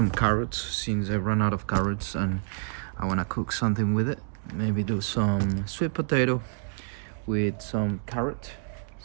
carrots since I ran out of carrots and I want to cook something with it. Maybe do some sweet potato with some carrot.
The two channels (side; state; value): left; silent; digital silence